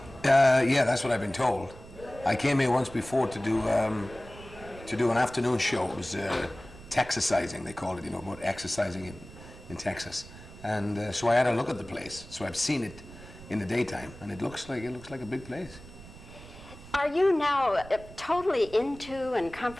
Yeah, that's what I've been told. I came here once before to do an afternoon show. It was Texasizing, they called it, about exercising in Texas. And so I had a look at the place. So I've seen it in the daytime, and it looks like a big place. Are you now totally into and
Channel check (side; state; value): right; noise; rumble, 17 dB below the sound